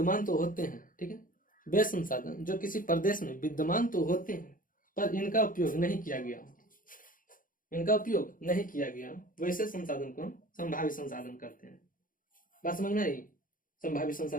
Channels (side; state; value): right; late; 0.40 ms